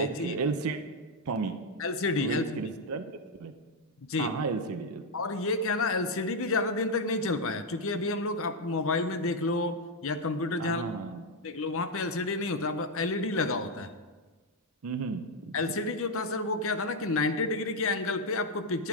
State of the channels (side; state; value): both; normal; correlation 0.02